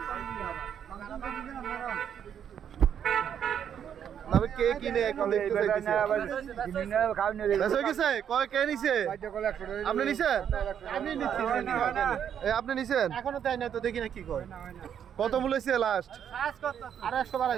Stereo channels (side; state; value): left; quieter; 8.8 dB